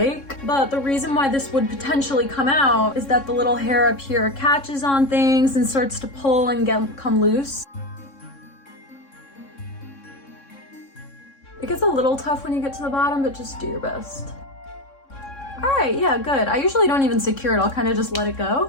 but the reason why this would potentially come out is that the little hair up here catches on things and starts to pull and come loose. It gets a little tough when you get to the bottom, but just do your best. All right, yeah, good. I usually don't even secure it. I'll kind of just let it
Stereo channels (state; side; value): late; right; 3.6 ms